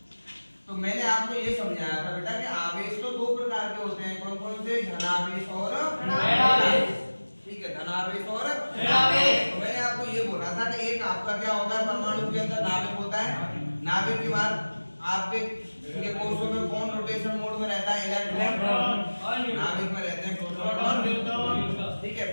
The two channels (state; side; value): inverted; both; correlation -1.00